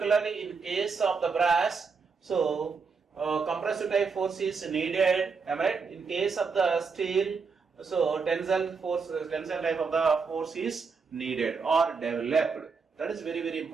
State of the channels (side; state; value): left; quieter; 5.1 dB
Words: in case of the brass, So compressive type force is needed, am I right? In case of the steel, so tensile force, tensile type of the force is needed or developed. That is very, very